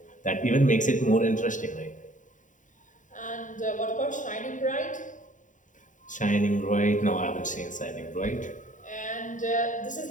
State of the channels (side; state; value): right; late; 0.37 ms